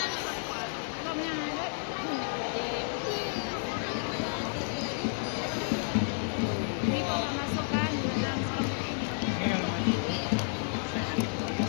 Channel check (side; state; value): right; silent; digital silence